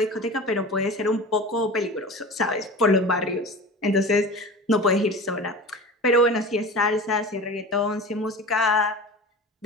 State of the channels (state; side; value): normal; both; correlation 0.34